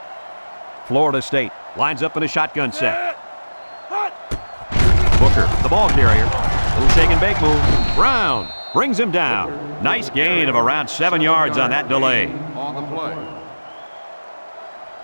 Florida State lines up in a shotgun set. Booker, the ball carrier. Little shake and bake move. Brown brings him down. Nice gain of around 7 yards on that delay. On the play.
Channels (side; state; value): both; inverted; correlation -1.00